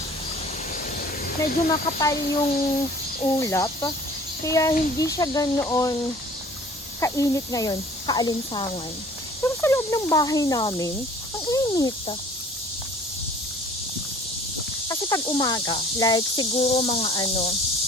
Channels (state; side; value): normal; both; correlation 0.51